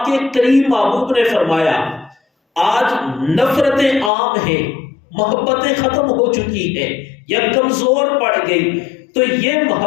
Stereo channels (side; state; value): right; drops out; at 4.1 s